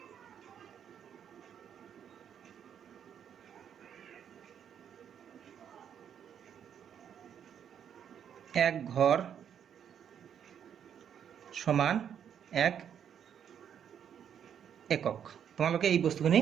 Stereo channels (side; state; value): left; quieter; 8.6 dB